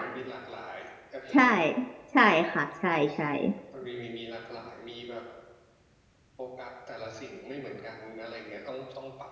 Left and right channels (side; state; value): both; identical; correlation 1.00